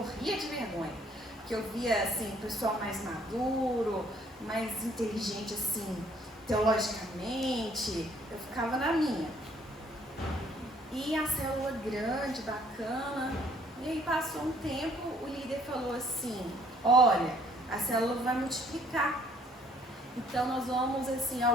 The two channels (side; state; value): both; normal; correlation 0.62